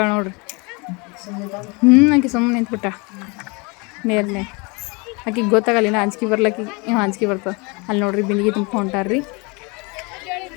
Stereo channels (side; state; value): right; quieter; 29.1 dB